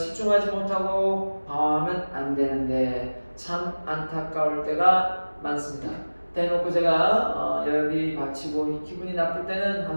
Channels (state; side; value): inverted; both; correlation -1.00